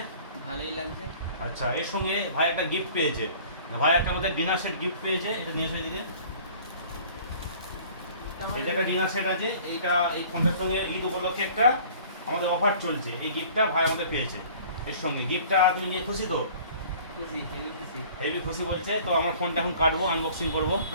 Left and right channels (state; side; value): inverted; both; correlation -0.49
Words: ভালোই লাগছে। আচ্ছা, এর সঙ্গে ভাই একটা গিফট পেয়েছে। ভাই একটা আমাদের ডিনার সেট গিফট পেয়েছে, এটা নিয়ে এসো এদিকে। এটা একটা ডিনার সেট আছে, এই ফোনটার সঙ্গে ঈদ উপলক্ষে একটা আমাদের অফার চলছে, এই গিফটটা ভাই আমাদের পেয়েছে। এর সঙ্গে গিফটটা তুমি নিয়ে খুশি তো? খুশি, হেভি খুশি। হেভি খুশি বলছে। তো আমার ফোনটা এখন কাটবো, আনবক্সিং করবো।